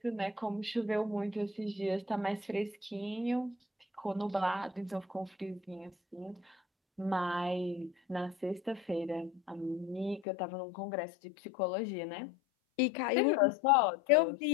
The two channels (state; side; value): drops out; right; at 10.2 s